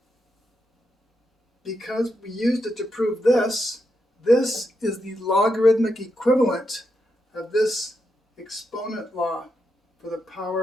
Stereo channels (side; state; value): both; normal; correlation 0.83